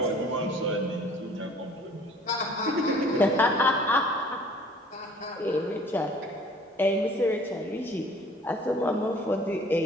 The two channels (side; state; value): both; normal; correlation 0.52